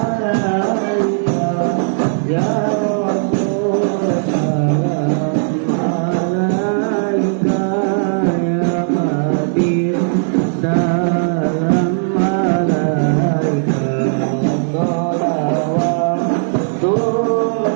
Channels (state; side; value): silent; left; digital silence